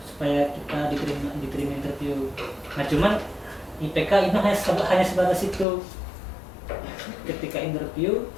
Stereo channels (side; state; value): right; drops out; at 5.7 s